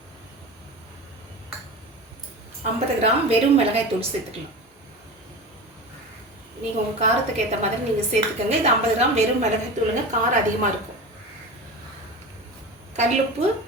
50 கிராம் வெறும் மிளகாய் தூள் சேர்த்துக்கலாம். நீங்கள் உங்கள் காரத்துக்கு ஏற்ற மாதிரி நீங்கள் சேர்த்துக்கோங்க. இது 50 கிராம் வெறும் மிளகாய் தூளுங்க. காரம் அதிகமாக இருக்கும். கல்லுப்பு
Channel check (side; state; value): both; normal; correlation 0.29